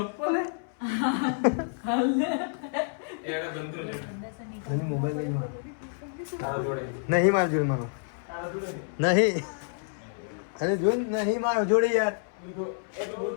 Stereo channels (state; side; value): silent; right; 59 dB below the other